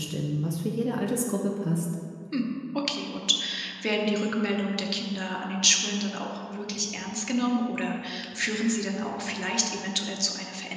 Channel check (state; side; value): identical; both; correlation 1.00